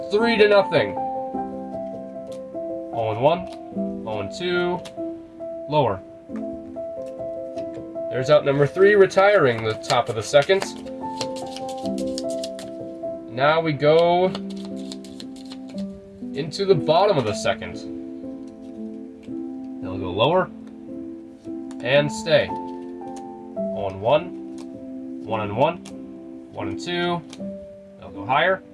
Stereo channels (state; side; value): identical; both; correlation 1.00